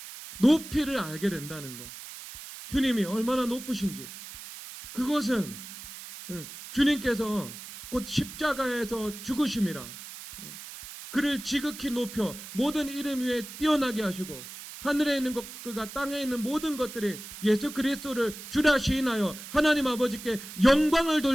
높이를 알게 된다는 거. 주님이 얼마나 높으신지 그것은 주님께서 곧 십자가에서 죽으심이라 그를 지극히 높여 모든 이름 위에 뛰어나게 하시고 하늘에 있는 것과 땅에 있는 모든 것들이 예수 그리스도를 주라 시인하여 하나님 아버지께 영광을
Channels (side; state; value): right; noise; hiss, 13 dB below the sound